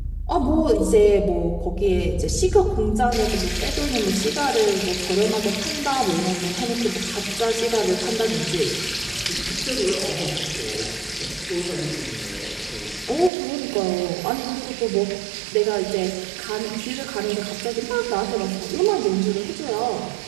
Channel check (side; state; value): left; drops out; at 13.3 s